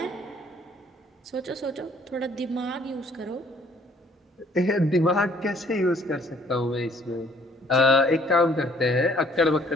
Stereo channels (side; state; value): both; normal; correlation 0.61